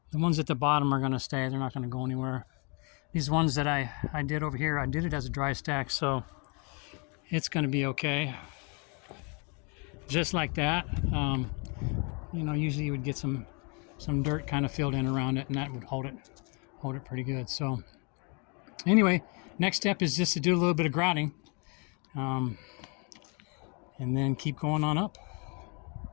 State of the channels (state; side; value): quieter; right; 34.3 dB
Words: The ones at the bottom are going to stay. They're not going to go anywhere. These ones that I did over here, I did it as a dry stack, so it's going to be okay. Just like that. Usually you would get some dirt kind of filled in around it, and that would hold it pretty good. So Anyway, next step is just to do a little bit of grouting, and then keep going on up.